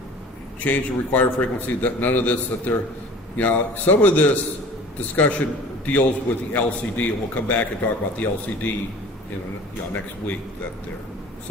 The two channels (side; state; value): both; normal; correlation 0.44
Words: change the required frequency. That none of this that there, some of this discussion deals with the LCD, and we'll come back and talk about the LCD in next week. That there.